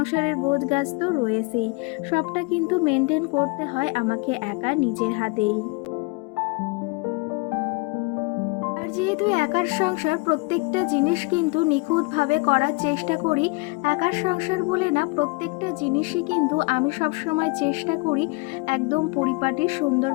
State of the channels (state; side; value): quieter; right; 27.5 dB